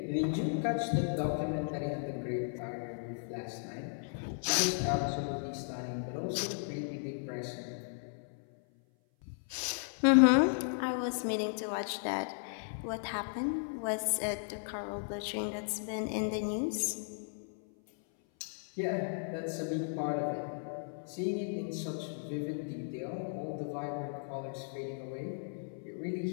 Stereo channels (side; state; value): right; silent; 54 dB below the other